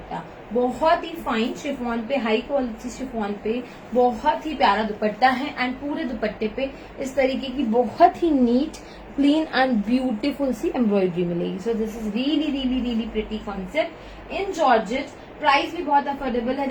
बहुत ही फाइन शिफॉन पे, हाई क्वालिटी शिफॉन पे बहुत ही प्यारा दुपट्टा है एंड पूरे दुपट्टे पे इस तरीके की बहुत ही नीट, क्लीन एंड ब्यूटीफुल सी एम्ब्रॉयडरी मिलेगी. So this is really really really pretty concept in georgette. Price भी बहुत अफोर्डेबल है.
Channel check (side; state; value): both; identical; correlation 1.00